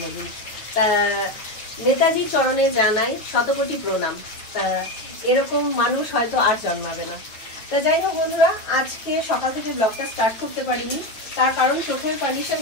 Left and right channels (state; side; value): late; right; 9.0 ms